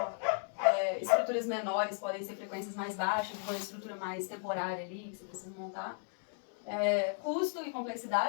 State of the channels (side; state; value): right; silent; 54 dB below the other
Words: Estruturas menores podem ser frequências mais baixas, uma estrutura mais temporária ali, que você precisa montar. Custo e